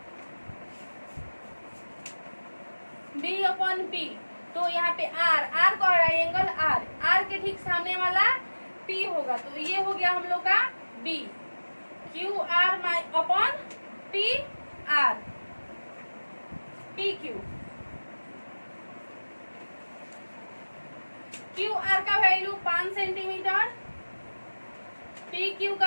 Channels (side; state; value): both; inverted; correlation -1.00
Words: B upon P. तो यहाँ पे आर आर का एंगल आर, आर के ठीक सामने वाला पी होगा, तो ये हो गया हम लोग का B. Q R upon P R, P Q. Q R का वैल्यू 5 सेंटीमीटर, पी क्यू